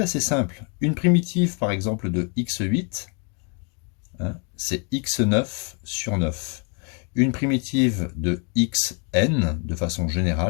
assez simple. Une primitive, par exemple, de x8, c'est x9 sur 9. Une primitive de xn, de façon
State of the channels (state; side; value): quieter; right; 37.6 dB